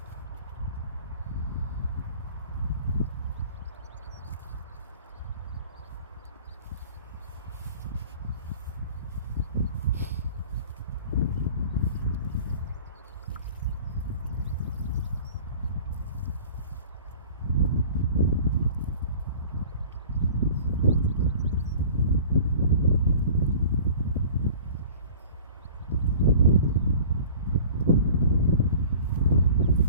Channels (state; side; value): inverted; both; correlation -0.44